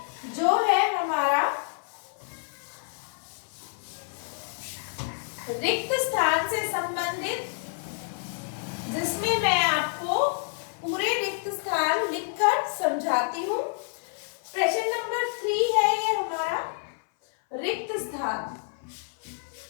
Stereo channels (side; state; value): right; silent; 59 dB below the other